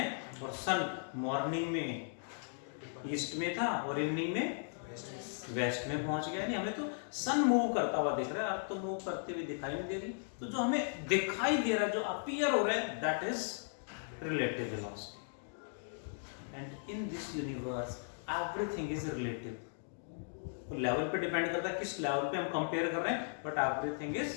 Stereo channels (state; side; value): silent; right; digital silence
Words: और सन मॉर्निंग में ईस्ट में था और इवनिंग में वेस्ट में पहुंच गया। नहीं, हमें तो सन मूव करता हुआ दिख रहा है, अर्थ तो मूव करती हुई दिखाई नहीं दे रही। तो जो हमें दिखाई दे रहा है, जो अपीयर हो रहा है, that is relative velocity. And in this universe everything is relative. तो लेवल पे डिपेंड करता है किस लेवल पे हम कंपेयर कर रहे हैं, but everything is